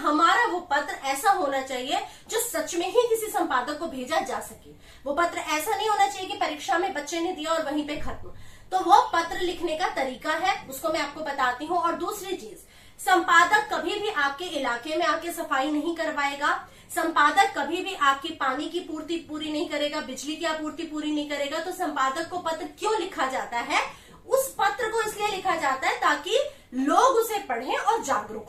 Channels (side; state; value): both; identical; correlation 1.00